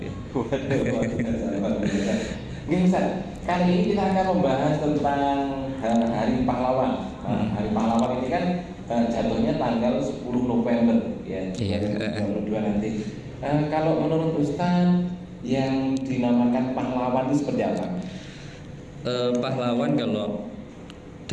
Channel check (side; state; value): both; identical; correlation 1.00